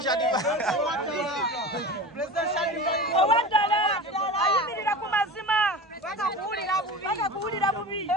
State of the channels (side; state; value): both; normal; correlation 0.32